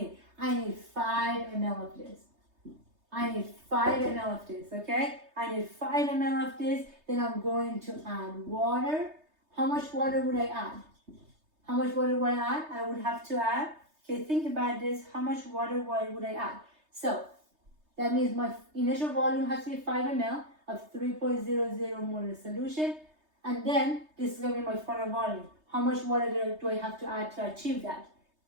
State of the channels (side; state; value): left; late; 3.3 ms